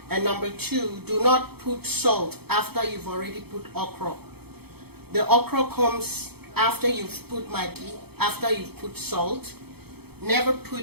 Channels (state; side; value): late; left; 0.96 ms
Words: And number 2, do not put salt after you've already put okra. The okra comes after you've put Maggi, after you've put salt. Never